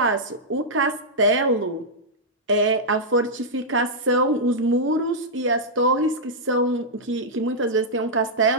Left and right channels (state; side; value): normal; both; correlation -0.08